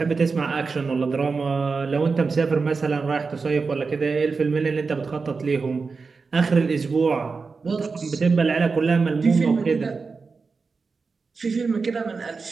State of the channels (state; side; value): quieter; left; 4.6 dB